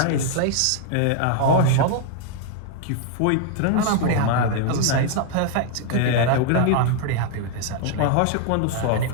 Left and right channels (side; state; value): both; different; correlation 0.00